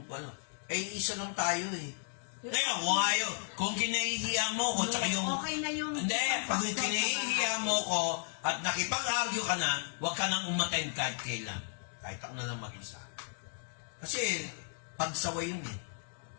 ano. Isa lang tayo eh. Ngayon, kung kinahihiya mo ko, tsaka yung... Okay na yung... Hindi, pag kinahihiya mo ko at nakipag-argue ka na, huwag ka nang umattend kahit kailan. Kahit ako na lang mag-isa. Kasi, pagsaway yun eh.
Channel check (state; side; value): silent; right; digital silence